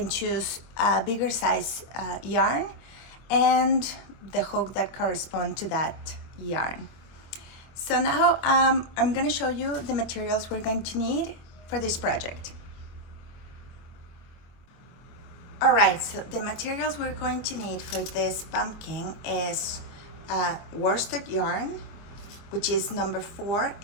choose a bigger size yarn and the hook that corresponds to that yarn. So now I'm going to show you the materials we're going to need for this project. Alright, so the materials we're going to need for this pumpkin is worsted yarn, which is number 4.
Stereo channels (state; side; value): late; right; 25 ms